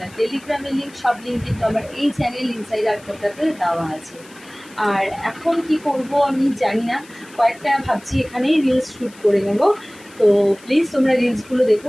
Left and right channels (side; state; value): left; noise; hiss, 24 dB below the sound